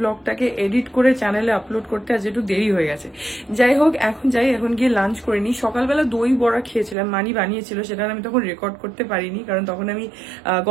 এডিট করে চ্যানেলে আপলোড করতে আজ একটু দেরি হয়ে গেছে। যাই হোক, এখন গিয়ে লাঞ্চ করে নিই। সকালবেলা দই বড়া খেয়েছিলাম, মানি বানিয়েছিল, সেটা আমি তখন রেকর্ড করতে পারিনি, কারণ তখন আমি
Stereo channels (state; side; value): drops out; left; at 7.0 s